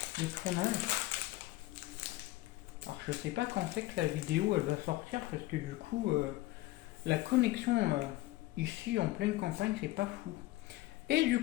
de tournage. Alors je sais pas quand c'est que la vidéo elle va sortir parce que du coup la connexion ici en pleine campagne c'est pas fou. Et du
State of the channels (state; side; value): quieter; right; 17.9 dB